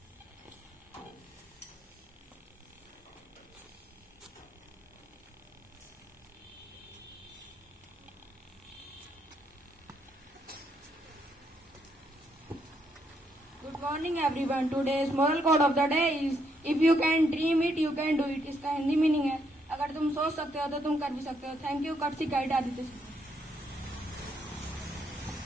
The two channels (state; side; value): normal; both; correlation 0.75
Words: Good morning everyone. Today's moral code of the day is if you can dream it, you can do it. इसका Hindi meaning है अगर तुम सोच सकते हो तो तुम कर भी सकते हो. थैंक यू कर्सी गाइड आदित्य.